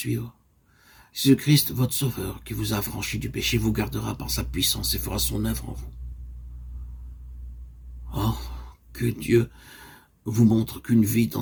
Jésus-Christ, votre Sauveur, qui vous a affranchi du péché, vous gardera par sa puissance et fera son œuvre en vous. Oh, que Dieu vous montre qu'une vie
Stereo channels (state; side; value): identical; both; correlation 1.00